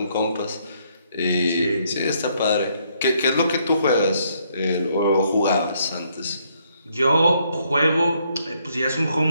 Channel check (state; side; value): inverted; both; correlation -0.71